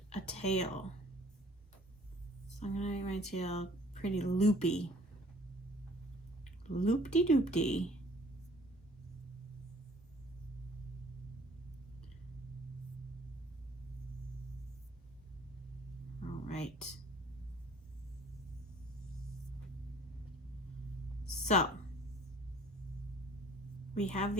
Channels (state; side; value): normal; both; correlation 0.54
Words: a tail. So I'm gonna make my tail pretty loopy. Loop-de-doop-de. All right. So we have